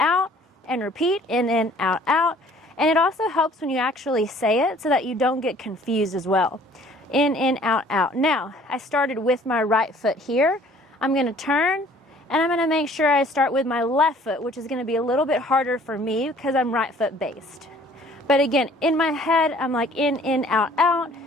and repeat, in, out, out. And it also helps when you actually say it so that you don't get confused as well. In, out, out. Now, I started with my right foot here. I'm going to turn, and I'm going to make sure I start with my left foot, which is going to be a little bit harder for me because I'm right foot based. But again, in my head, I'm like in, out, out,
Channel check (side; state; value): both; normal; correlation 0.55